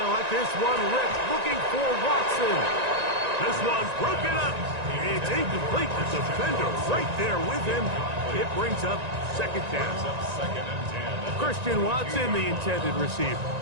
let this one rip, looking for Watson. This one's broken up. It's incomplete. The defender right there with him. It brings up second down. Christian Watson, the intended receiver.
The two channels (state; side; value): late; left; 1.9 ms